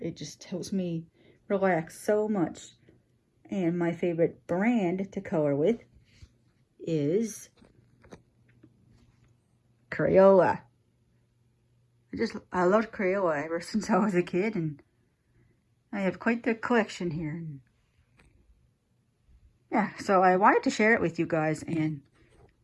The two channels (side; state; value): both; identical; correlation 1.00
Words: It just helps me relax so much. And my favorite brand to color with is Crayola. I loved Crayola ever since I was a kid, and I have quite the collection here. Yeah, so I wanted to share it with you guys. And